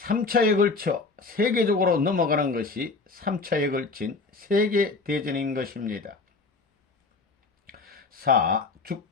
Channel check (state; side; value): quieter; right; 4.0 dB